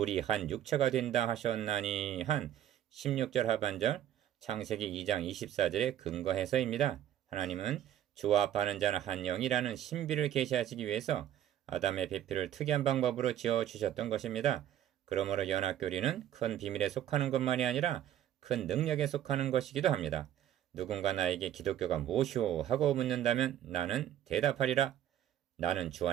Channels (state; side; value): quieter; left; 11.2 dB